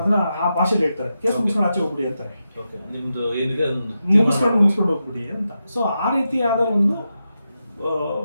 ಆ ಭಾಷೆಯಲ್ಲಿ ಹೇಳ್ತಾರೆ, ಕೇಸ್ ಮುಗಿಸ್ಕೊಂಡು ಆಚೆ ಹೋಗ್ಬಿಡಿ ಅಂತಾರೆ, ಮುಗಿಸ್ಕೊಂಡು ಹೋಗ್ಬಿಡಿ ಅಂತ. ಸೊ ಆ ರೀತಿಯಾದ ಒಂದು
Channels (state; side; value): inverted; both; correlation -0.88